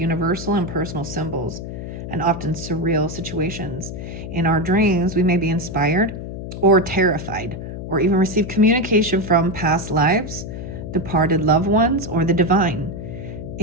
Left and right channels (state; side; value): noise; left; hum, 8 dB below the sound